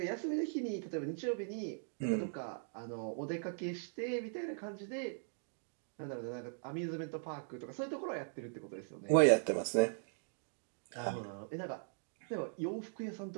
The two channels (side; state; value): left; silent; digital silence